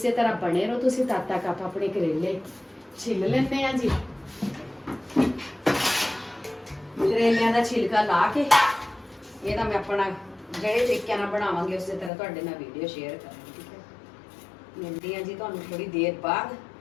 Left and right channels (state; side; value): drops out; right; at 12.1 s